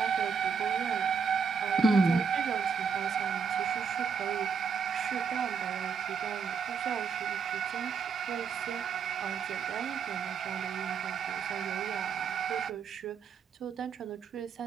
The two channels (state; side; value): quieter; left; 6.1 dB